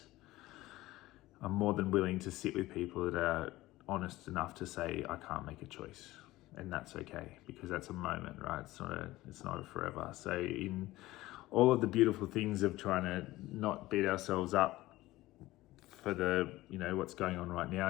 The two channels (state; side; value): quieter; right; 17.6 dB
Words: I'm more than willing to sit with people that are honest enough to say, I can't make a choice. And that's okay, because that's a moment, right? It's not a forever. So in all of the beautiful things of trying to not beat ourselves up for the, what's going on right now,